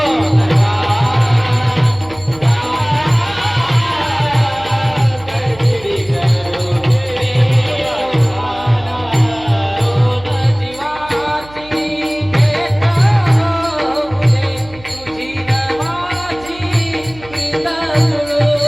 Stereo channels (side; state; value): right; noise; hum, 20 dB below the sound